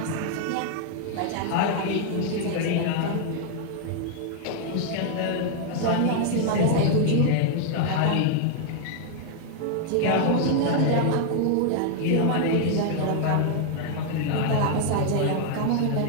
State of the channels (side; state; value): both; different; correlation 0.00